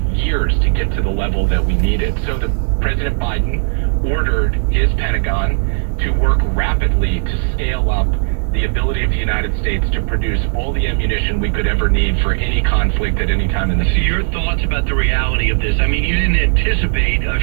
years to get to the level that we needed. So President Biden ordered his Pentagon to work rapidly to scale up the ability of the United States to produce all the ammunition we could ever need for any conflict at any time in the future. Your thoughts about the reality of this? I mean, you didn't anticipate of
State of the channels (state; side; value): silent; left; 64 dB below the other